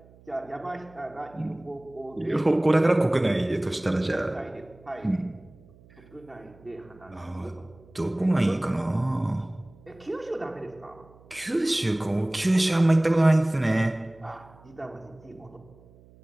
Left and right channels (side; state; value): right; noise; hum, 25 dB below the sound